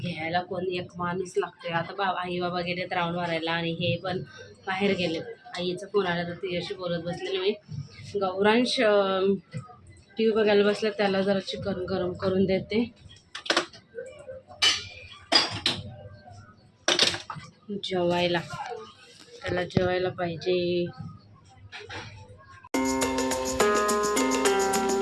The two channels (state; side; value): identical; both; correlation 1.00